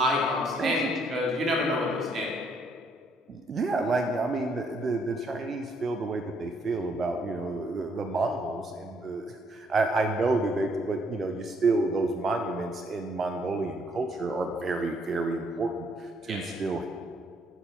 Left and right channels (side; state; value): both; normal; correlation 0.69